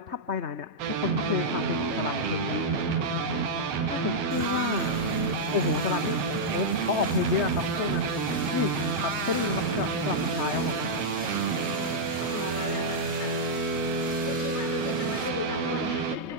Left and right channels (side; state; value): left; late; 3.2 ms